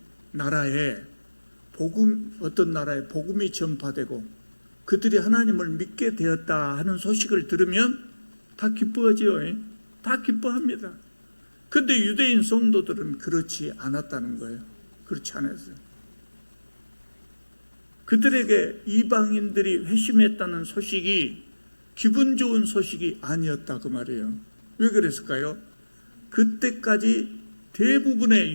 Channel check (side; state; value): both; inverted; correlation -1.00